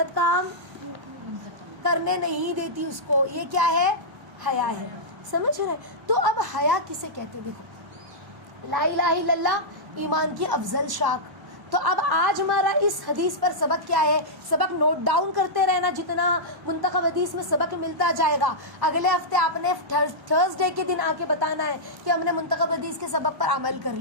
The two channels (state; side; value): late; left; 1.0 ms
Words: کام کرنے نہیں دیتی اس کو. یہ کیا ہے؟ حیا ہے. سمجھ رہے؟ تو اب حیا کسے کہتے؟ دیکھو، لا الہ الا اللہ ایمان کی افضل شاخ. تو اب آج ہمارا اس حدیث پر سبق کیا ہے؟ سبق نوٹ ڈاؤن کرتے رہنا، جتنا منتخب حدیث میں سبق ملتا جائے گا. اگلے ہفتے آپ نے تھرسڈے کے دن آ کے بتانا ہے کہ ہم نے منتخب حدیث کے سبق پر عمل کر